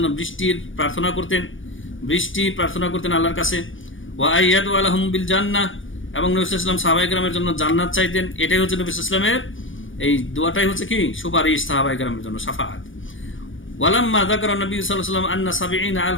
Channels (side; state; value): right; late; 0.57 ms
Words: বৃষ্টি প্রার্থনা করতেন আল্লাহর কাছে। ওয়া আইয়াদু লাহুম বিল জান্নাহ, এবং নবী সাল্লাল্লাহু আলাইহি ওয়াসাল্লাম সাহাবায়ে কেরামের জন্য জান্নাত চাইতেন। এটাই হচ্ছে নবী সাল্লাল্লাহু আলাইহি ওয়াসাল্লামের এই দোয়াটাই হচ্ছে কি সুপারিশ সাহাবায়ে কেরামের জন্য, শাফাআত। ওয়ালাম্মা যাকারা নবী সাল্লাল্লাহু আলাইহি ওয়াসাল্লাম আন্না